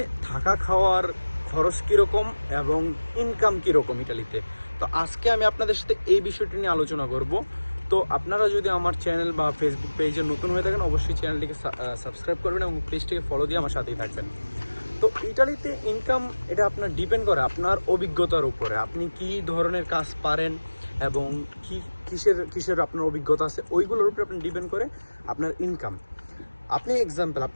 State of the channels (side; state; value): both; inverted; correlation -1.00